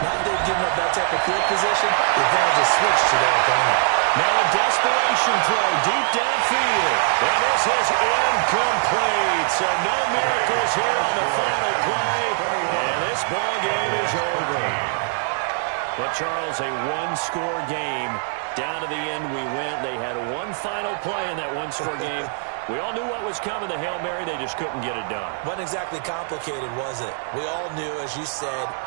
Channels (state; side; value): silent; left; digital silence